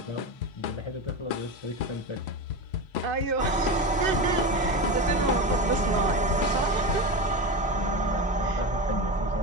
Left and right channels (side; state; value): both; normal; correlation 0.21